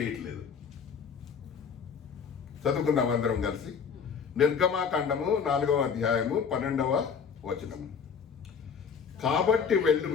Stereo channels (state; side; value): quieter; right; 6.4 dB